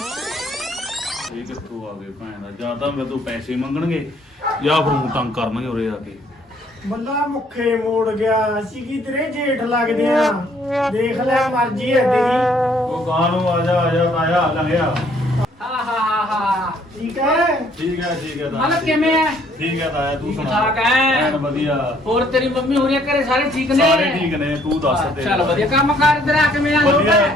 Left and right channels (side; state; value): both; normal; correlation 0.64